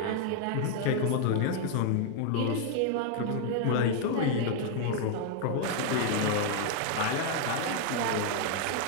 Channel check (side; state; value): both; different; correlation 0.00